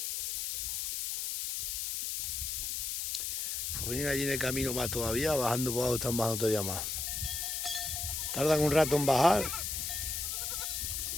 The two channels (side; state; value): left; noise; hiss, 2 dB below the sound